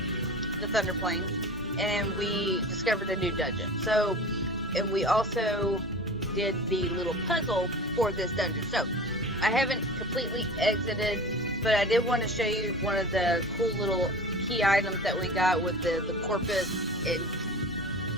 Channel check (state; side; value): normal; both; correlation 0.36